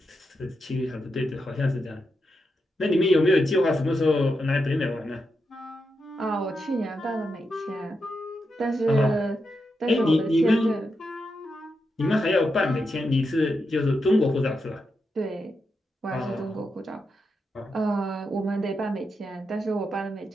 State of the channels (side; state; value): both; normal; correlation 0.86